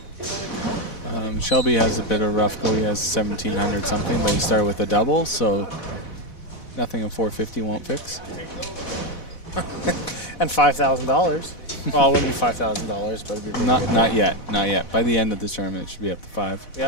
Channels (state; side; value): late; right; 4.1 ms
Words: Shelby has a bit of a rough go. He has 1,700 something, but he started with a double, so nothing a 450 won't fix. And $5,000. Well, it wouldn't be $5,000, but it'd be pretty good. Not yet. Not yet. By the end of the tournament, it should be up to 5.